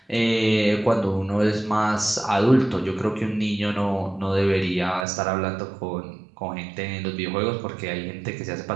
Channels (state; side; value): drops out; left; at 5.1 s